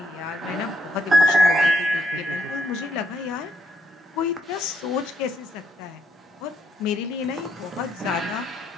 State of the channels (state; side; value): normal; both; correlation 0.75